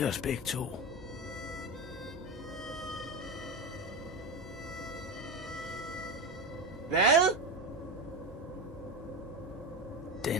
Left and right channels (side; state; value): both; normal; correlation 0.19